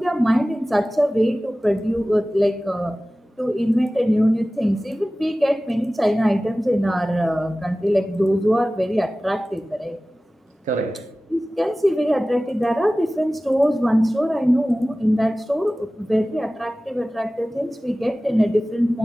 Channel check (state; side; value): normal; both; correlation 0.97